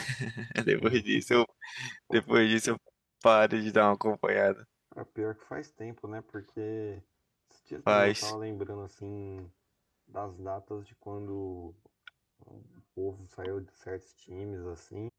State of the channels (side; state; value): both; identical; correlation 1.00